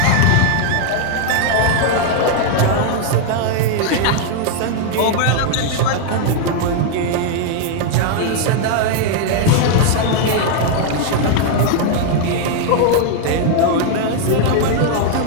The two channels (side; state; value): both; different; correlation 0.00